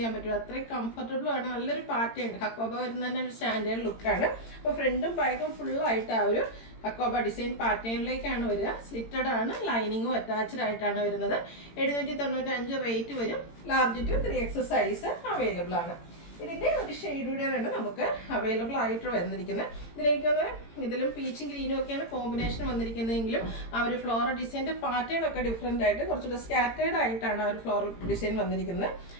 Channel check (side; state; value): right; late; 18 ms